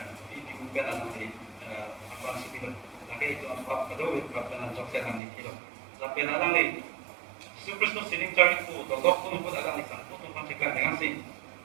bi ben alang ni apa si bi lagi itu pop kado pop ben jo siarang ni kilo la ben alang ni Yesus Kristus sining cari ku do dok pun alang ni sang pun kan dengan si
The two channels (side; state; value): left; drops out; at 5.2 s